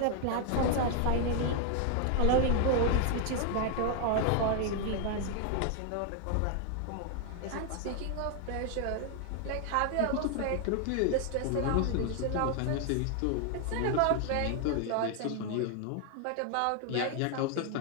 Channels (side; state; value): both; different; correlation 0.00